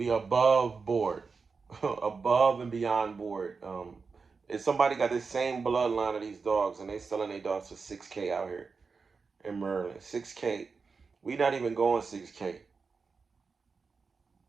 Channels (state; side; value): quieter; left; 4.8 dB